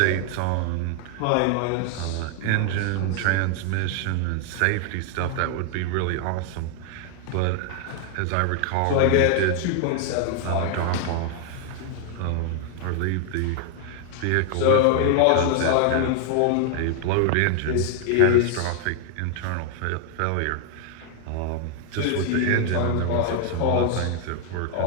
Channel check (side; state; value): both; different; correlation 0.00